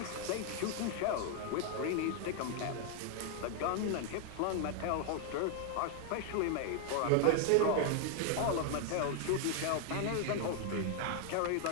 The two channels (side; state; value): both; different; correlation 0.00